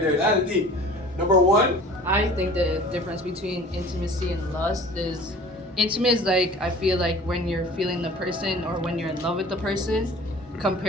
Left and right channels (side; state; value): both; normal; correlation 0.45